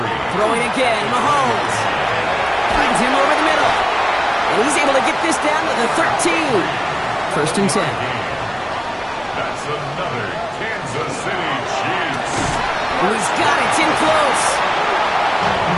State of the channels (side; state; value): both; identical; correlation 1.00